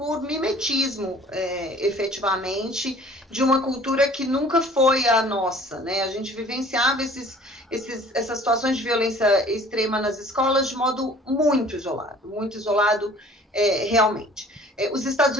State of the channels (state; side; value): normal; both; correlation 0.50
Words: mimetismo, efetivamente, de uma cultura que nunca foi a nossa, né? A gente vivenciava essas situações de violência extrema nas escolas de modo muito isolado realmente. Os Estados